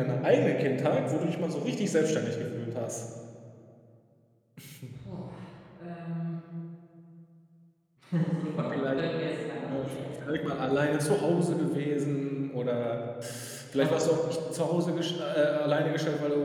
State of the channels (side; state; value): both; identical; correlation 1.00